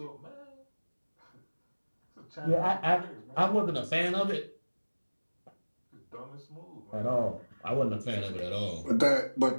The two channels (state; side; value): inverted; both; correlation -1.00